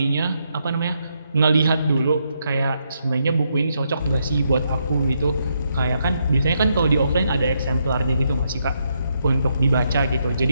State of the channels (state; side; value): inverted; both; correlation -0.79